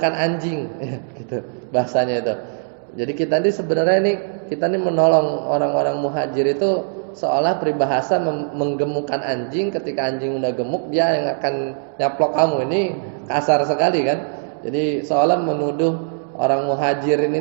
anjing gitu bahasanya itu. Jadi kita ini menolong orang-orang muhajir itu seolah peribahasa menggemukkan anjing. Ketika anjing udah gemuk, dia yang akan nyaplok kamu. Ini kasar sekali kan. Jadi seolah menuduh orang muhajirin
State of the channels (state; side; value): silent; left; digital silence